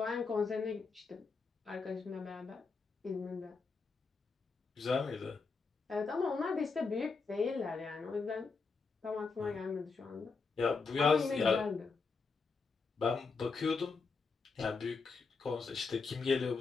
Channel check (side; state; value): right; quieter; 4.6 dB